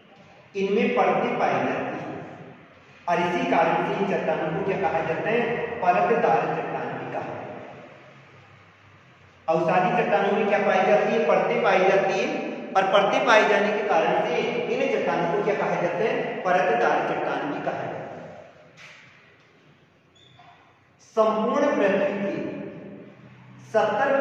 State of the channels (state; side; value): identical; both; correlation 1.00